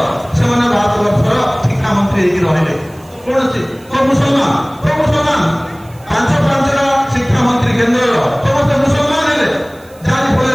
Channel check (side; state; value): right; noise; hiss, 27 dB below the sound